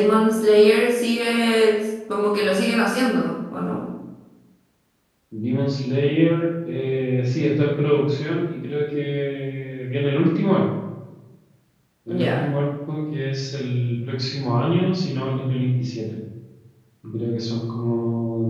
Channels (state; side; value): identical; both; correlation 1.00